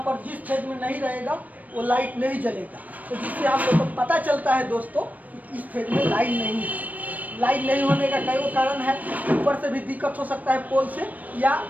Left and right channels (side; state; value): left; late; 0.076 ms